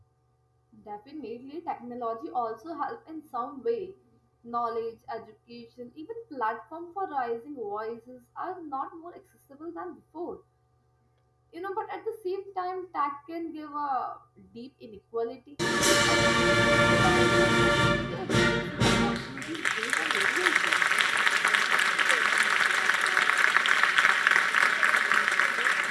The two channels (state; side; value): identical; both; correlation 1.00